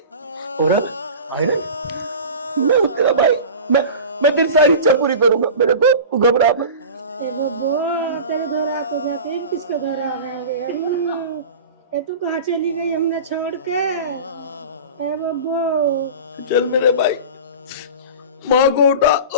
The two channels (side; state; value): both; inverted; correlation -0.34